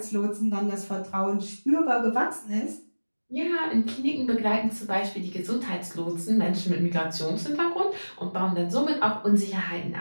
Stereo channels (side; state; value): both; inverted; correlation -1.00